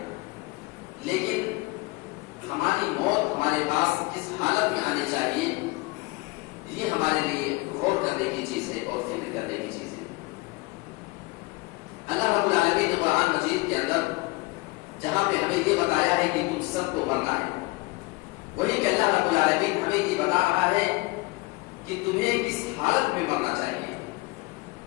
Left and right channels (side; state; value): right; quieter; 24.0 dB